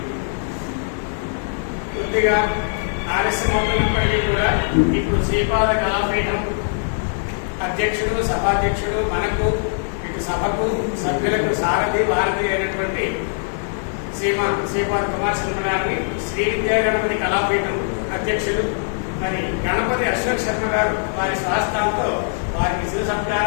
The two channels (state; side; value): silent; right; 65 dB below the other